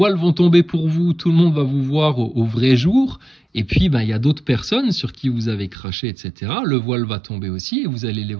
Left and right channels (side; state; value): left; drops out; at 5.8 s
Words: vont tomber pour vous, tout le monde va vous voir au vrai jour, et puis ben, y a d'autres personnes sur qui vous avez craché, etc. Le voile va tomber aussi, et vous allez les